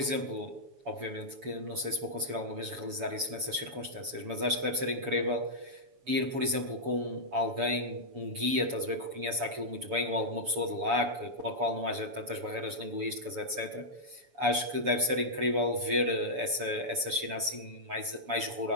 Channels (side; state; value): left; late; 7.0 ms